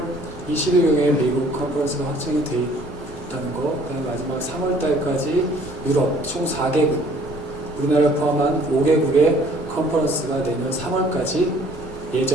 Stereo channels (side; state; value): both; normal; correlation 0.57